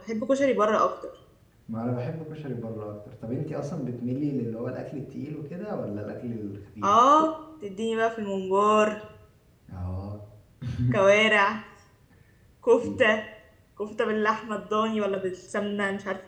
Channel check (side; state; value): both; identical; correlation 1.00